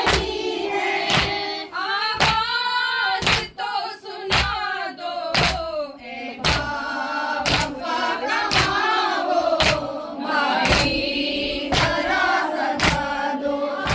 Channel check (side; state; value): both; identical; correlation 1.00